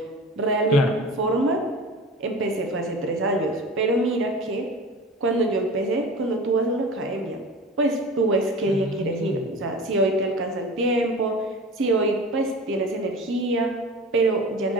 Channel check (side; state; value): both; normal; correlation 0.36